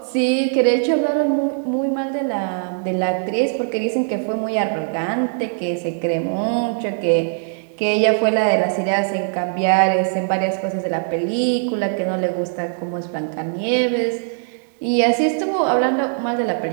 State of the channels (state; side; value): silent; left; 65 dB below the other